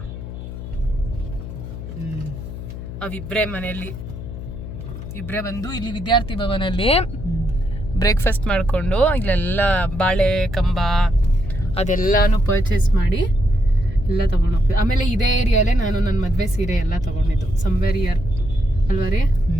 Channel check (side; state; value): left; noise; hum, 10 dB below the sound